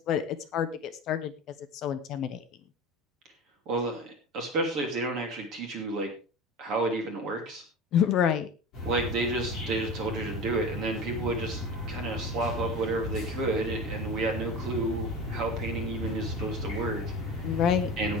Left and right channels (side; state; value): both; normal; correlation 0.31